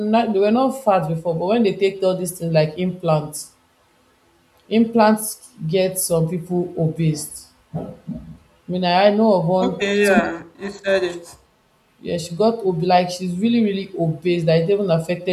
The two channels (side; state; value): both; identical; correlation 1.00